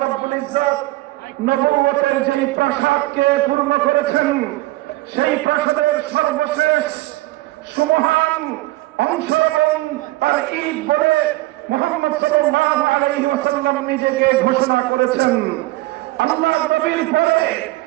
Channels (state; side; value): quieter; left; 19.3 dB